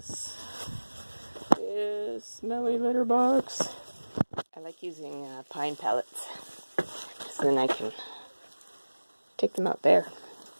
This smelly litter box. I like using pine pellets, so then I can take them out there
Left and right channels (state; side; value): inverted; both; correlation -1.00